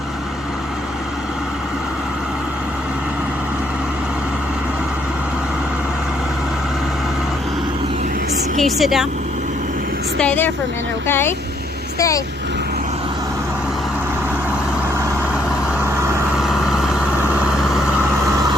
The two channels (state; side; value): normal; both; correlation 0.70